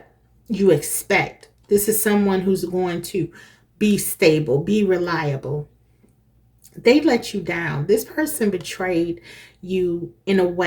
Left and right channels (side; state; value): both; identical; correlation 1.00